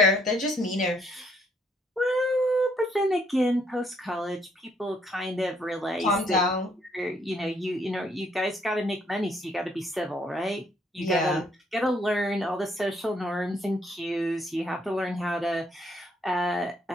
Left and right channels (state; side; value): normal; both; correlation 0.68